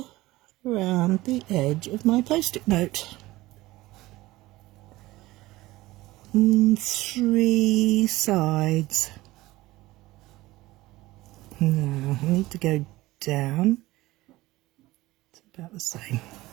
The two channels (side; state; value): left; quieter; 18.4 dB